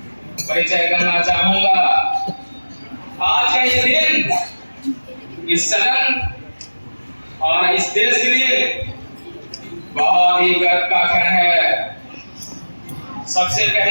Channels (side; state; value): both; inverted; correlation -1.00